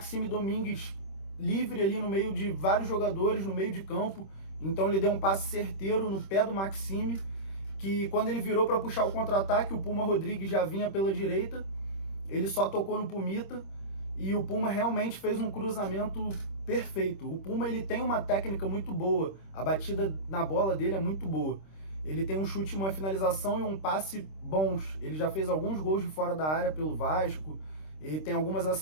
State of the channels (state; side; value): late; right; 26 ms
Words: Domingues livre ali no meio de vários jogadores, no meio de campo. Então ele deu um passe certeiro no pé do Maxime, que quando ele virou para puxar o contra-ataque, o Puma Rodrigues já vinha pela direita, ele só tocou no Pumita, e o Puma realmente fez um cruzamento perfeito. O Puma, ele tem uma técnica muito boa, a batida na bola dele é muito boa. Ele tem um chute, uma finalização e um passe bons. Ele já fez alguns gols de fora da área pelo Vasco, ele tem algumas